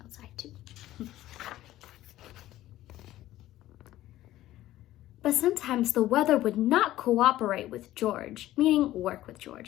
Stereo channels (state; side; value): quieter; right; 14.7 dB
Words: outside too. But sometimes the weather would not cooperate with George, meaning work with